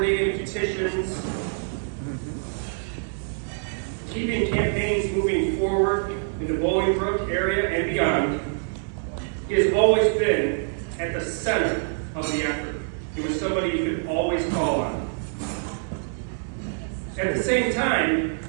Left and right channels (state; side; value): silent; left; digital silence